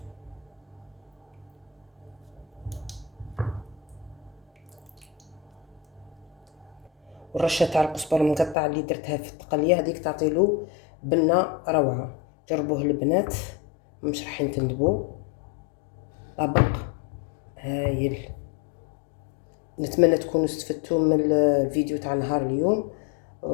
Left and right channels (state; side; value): drops out; right; at 8.6 s